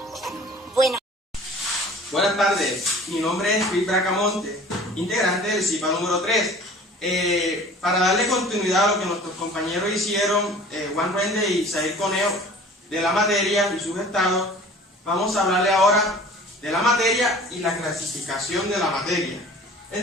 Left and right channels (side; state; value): both; normal; correlation 0.46